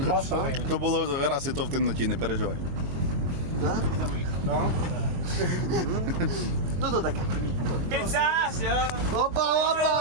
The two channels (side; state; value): left; late; 22 ms